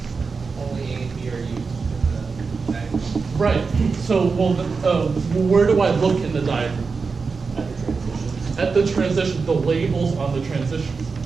Only A and B are used in the diagram. Right, so where do I look in the diagram? At the transition. At the transition, the labels on the transitions.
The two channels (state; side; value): quieter; left; 4.8 dB